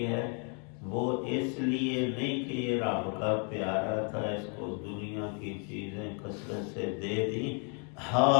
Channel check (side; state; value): right; quieter; 39.7 dB